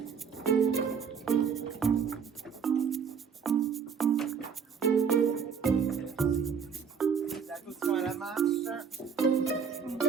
Attention à la marche.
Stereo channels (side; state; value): left; quieter; 6.6 dB